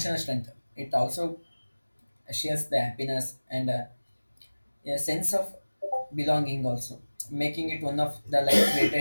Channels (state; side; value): inverted; both; correlation -1.00